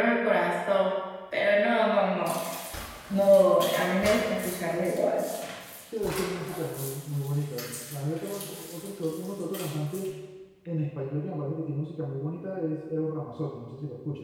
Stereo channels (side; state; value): both; identical; correlation 1.00